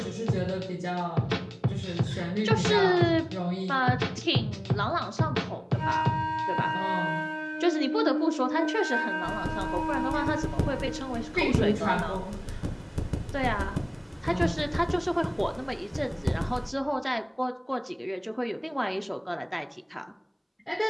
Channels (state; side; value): identical; both; correlation 1.00